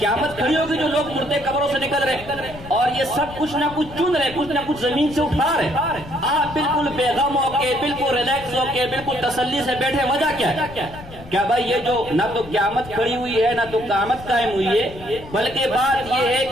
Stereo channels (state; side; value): noise; left; rumble, 16 dB below the sound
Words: کھڑی ہوگی جو لوگ مردے قبروں سے نکل رہے اور یہ سب کچھ نہ کچھ چن رہے، کچھ نہ کچھ زمین سے اٹھا رہے، آپ بالکل بے غم ہو کے، بالکل ریلیکس ہو کے، بالکل تسلی سے بیٹھے، وجہ کیا ہے؟ کیا بھائی یہ جو نہ تو قیامت کھڑی ہوئی ہے نہ تو قیامت قائم ہوئی ہے، بلکہ بات یہ ہے